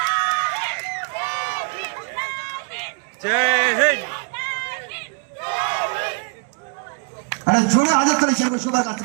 আরে জোরে হাজার তালি চাইবো সবার কাছ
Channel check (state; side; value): quieter; left; 39.9 dB